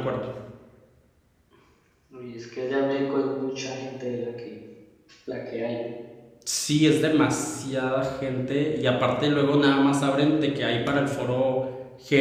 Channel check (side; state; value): both; identical; correlation 1.00